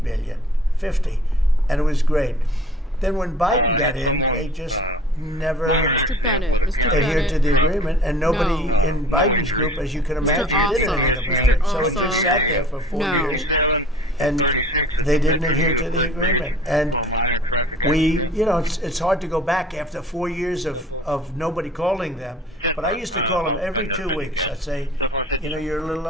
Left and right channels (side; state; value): both; normal; correlation 0.48